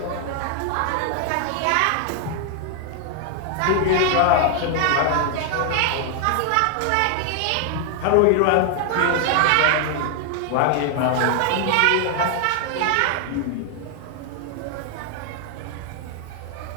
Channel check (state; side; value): different; both; correlation 0.00